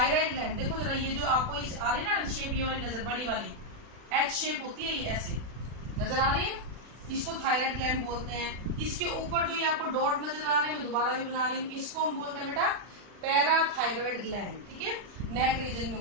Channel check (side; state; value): left; late; 40 ms